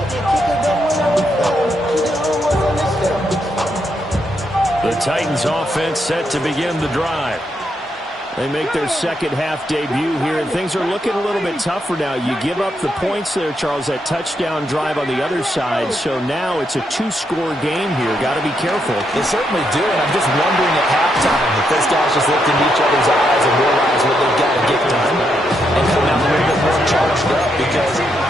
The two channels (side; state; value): both; normal; correlation 0.79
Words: The Titans offense set to begin the drive. They make their 2nd half debut here, and things are looking a little bit tougher now. You give up the points there, Charles, that touchdown drive on the other side. So now it's a 2-score game here. Got to be careful. They certainly do, and I'm just wondering at halftime if those guys just looked in each other's eyes and realized what they've got to get